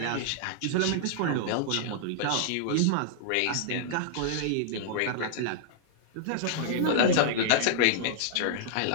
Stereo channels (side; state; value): both; different; correlation -0.01